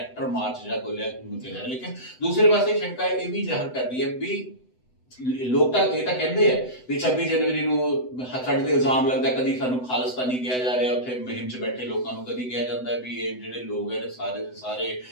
ਮਾਰਚ ਜਿਹੜਾ ਖੋਲਿਆ ਗਿਆ। ਲੇਕਿਨ ਦੂਸਰੇ ਪਾਸੇ ਸ਼ੰਕਾ ਇਹ ਵੀ ਜ਼ਾਹਰ ਕਰਦੀ ਹੈ ਵੀ ਲੋਕ ਤਾਂ ਇਹ ਤਾਂ ਕਹਿੰਦੇ ਆ ਵੀ 26 ਜਨਵਰੀ ਨੂੰ ਸਾਡੇ ਤੇ ਇਲਜ਼ਾਮ ਲੱਗਦਾ ਕਦੀ ਸਾਨੂੰ ਖਾਲਿਸਤਾਨੀ ਕਿਹਾ ਜਾ ਰਿਹਾ, ਉੱਥੇ ਮੁਹਿੰਮ 'ਚ ਬੈਠੇ ਲੋਕਾਂ ਨੂੰ ਕਦੀ ਕਿਹਾ ਜਾਂਦਾ ਵੀ ਇਹ ਜਿਹੜੇ ਲੋਕ ਹੈ ਸਾਰੇ ਦੇ ਸਾਰੇ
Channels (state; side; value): late; right; 7.9 ms